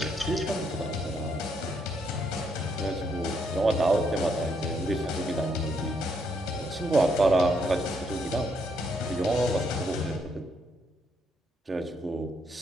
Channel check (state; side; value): normal; both; correlation 0.74